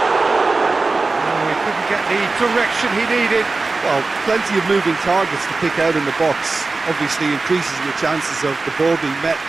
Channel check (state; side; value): quieter; left; 3.7 dB